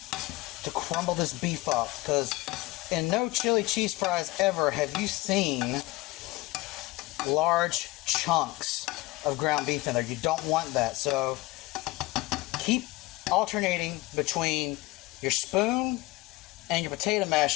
to crumble this beef up, because in no chili cheese fries ever have you seen large chunks of ground beef in there. You don't want that. So keep alternating between your spoon and your potato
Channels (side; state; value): right; quieter; 20.5 dB